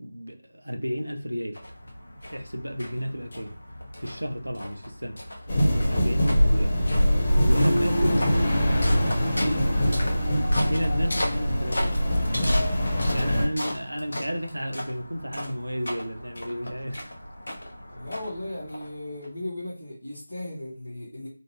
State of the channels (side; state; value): both; inverted; correlation -0.96